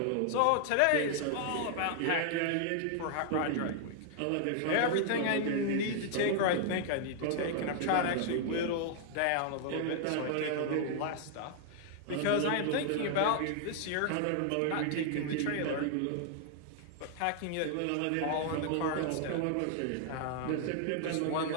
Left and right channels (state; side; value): different; both; correlation 0.00